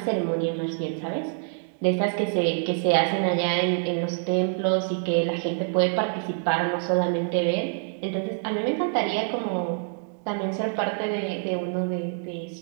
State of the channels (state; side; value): silent; left; 57 dB below the other